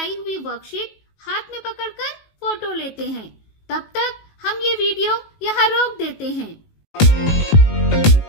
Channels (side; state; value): right; late; 19 ms